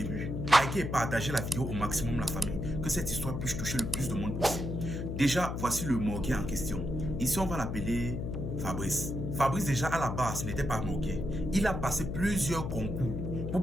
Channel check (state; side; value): noise; left; hum, 3 dB below the sound